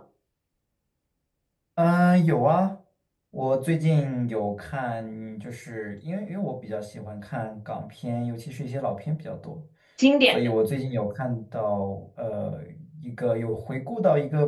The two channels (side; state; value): both; identical; correlation 1.00